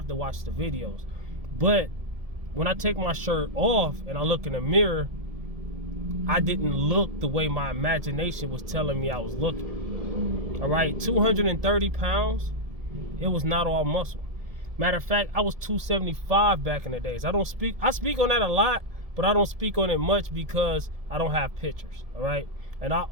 to watch the videos. But when I take my shirt off and I look in the mirror, I didn't look the way my imagination was telling me I was looking. All right, 230 pounds, it was not all muscle. Matter of fact, I was 275 back in the days. I speak on that a lot, but I don't speak on it much because I don't have pictures, all right? And I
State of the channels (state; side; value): late; left; 1.7 ms